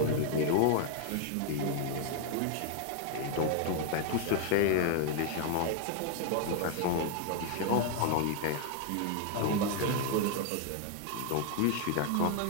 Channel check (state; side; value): different; both; correlation 0.00